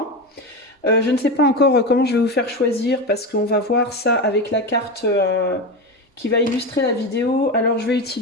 Je ne sais pas encore comment je vais vous faire choisir parce qu'on va voir ça avec la carte qui va illustrer la vidéo. Alors, je vais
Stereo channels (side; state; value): both; normal; correlation 0.19